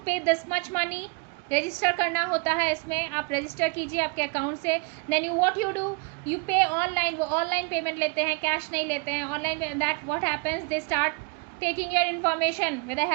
pay this much money. Register करना होता है इसमें, आप रजिस्टर कीजिए आपके अकाउंट से. Then you what you do, you pay online. वो ऑनलाइन पेमेंट लेते हैं, कैश नहीं लेते हैं. Online that what happens, they start taking your information with the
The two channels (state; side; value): quieter; left; 31.8 dB